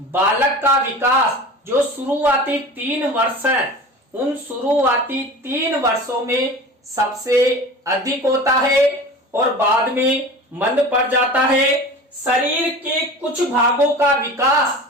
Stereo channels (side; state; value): both; normal; correlation 0.36